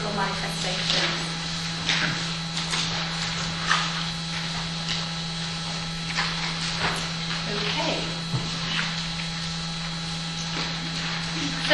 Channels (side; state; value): both; identical; correlation 1.00